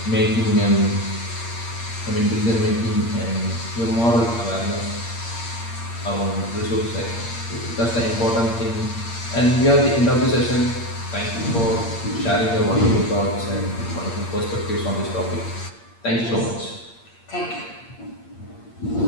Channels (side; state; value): right; late; 8.6 ms